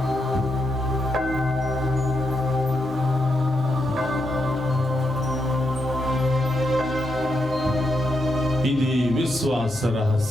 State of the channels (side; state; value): both; normal; correlation 0.82